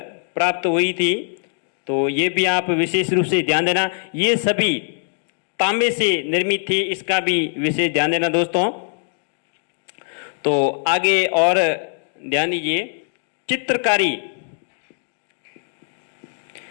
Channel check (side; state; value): right; silent; 65 dB below the other